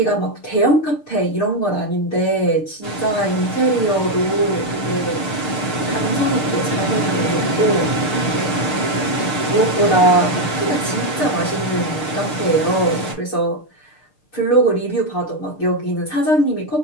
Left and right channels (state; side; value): late; right; 6.6 ms